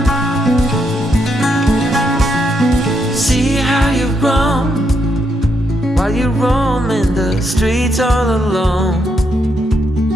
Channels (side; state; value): both; normal; correlation 0.79